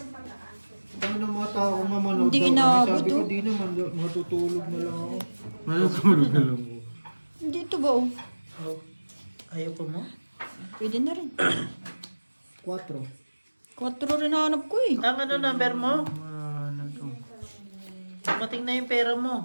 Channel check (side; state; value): both; inverted; correlation -1.00